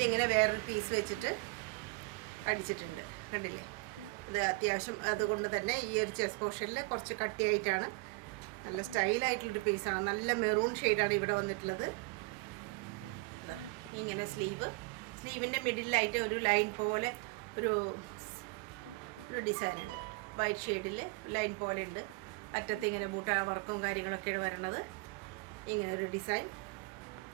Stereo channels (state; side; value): quieter; left; 25.9 dB